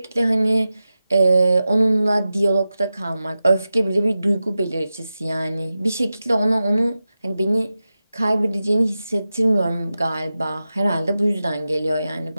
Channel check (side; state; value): both; inverted; correlation -0.93